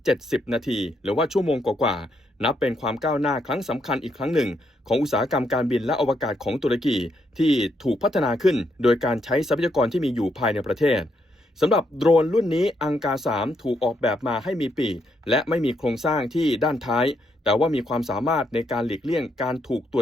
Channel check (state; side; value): normal; both; correlation 0.77